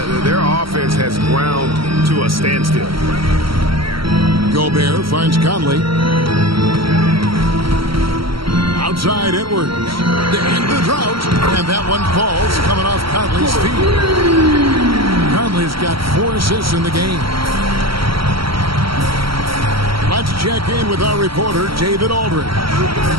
their offense has ground to a standstill. Gobert finds Conley. Outside Edwards. To end the drought. And that one falls coming off Conley's feet. Conley's got 4 assists in the game. Let's check in with our reporter, David Aldridge.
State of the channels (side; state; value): left; late; 0.74 ms